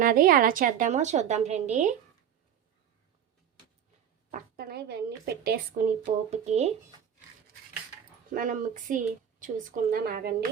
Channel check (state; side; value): quieter; left; 9.0 dB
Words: ఎలా చేద్దామో చూద్దాం రండి. పక్కన ఇవన్నీ పెట్టేసుకుని పోపుకి మనం మిక్సీ చూసుకుందాం.